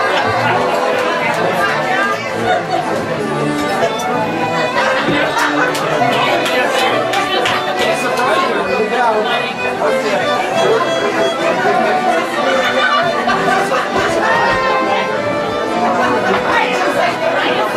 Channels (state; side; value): identical; both; correlation 1.00